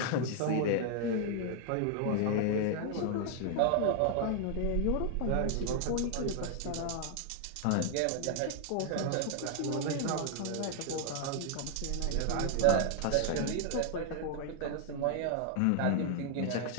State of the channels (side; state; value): both; different; correlation 0.00